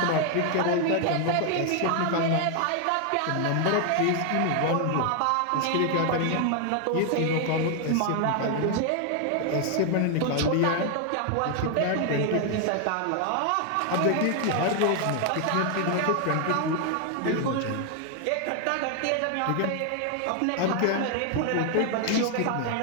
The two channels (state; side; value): different; both; correlation 0.00